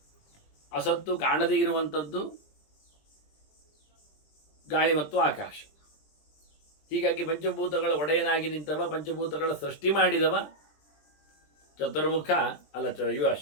ಅಸತ್ತು ಕಾಣದೇ ಇರುವಂಥದ್ದು ಗಾಳಿ ಮತ್ತು ಆಕಾಶ. ಹೀಗಾಗಿ ಪಂಚಭೂತಗಳ ಒಡೆಯನಾಗಿ ನಿಂತವ, ಪಂಚಭೂತಗಳ ಸೃಷ್ಟಿ ಮಾಡಿದವ ಚತುರ್ಮುಖ ಅಲ್ಲ ಇವ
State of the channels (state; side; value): late; right; 20 ms